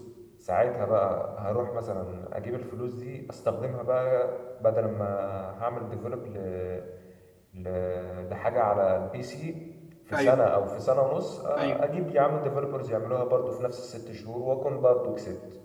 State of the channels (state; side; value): identical; both; correlation 1.00